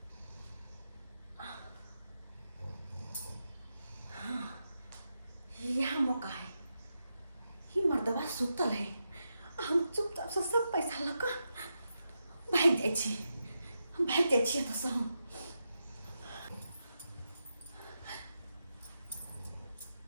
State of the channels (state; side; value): inverted; both; correlation -0.87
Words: हाँ यहाँ मौका है। ही मर्दबा सुतल है हम चुपचाप से सब पैसा लगा भाग जाए छी हम भाग जाए छी तो सब